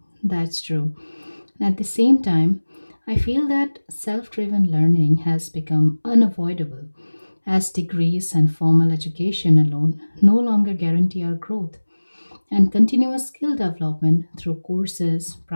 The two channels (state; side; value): inverted; both; correlation -1.00